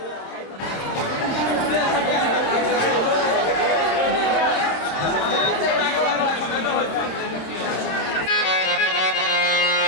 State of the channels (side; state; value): right; late; 26 ms